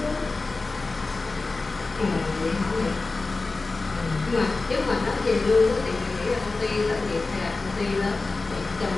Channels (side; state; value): right; quieter; 3.6 dB